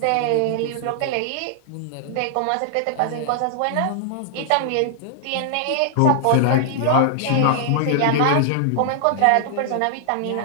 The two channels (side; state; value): both; different; correlation -0.01